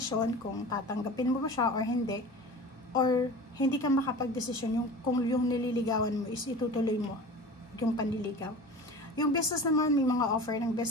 kung tatanggapin mo ba siya or hindi, or hindi ka makapag-desisyon kung yung nililigawan mo is itutuloy mo yung panliligaw. Yung business naman, may mga offer ng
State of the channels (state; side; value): normal; both; correlation 0.36